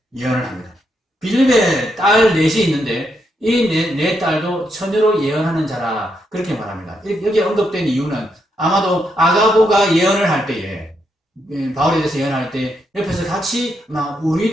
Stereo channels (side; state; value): both; normal; correlation 0.80